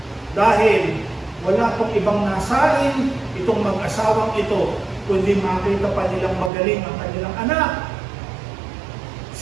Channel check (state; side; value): drops out; left; at 6.5 s